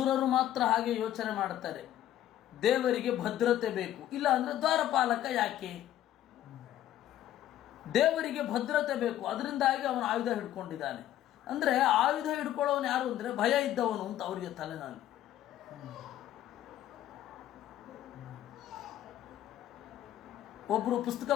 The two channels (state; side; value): quieter; right; 12.4 dB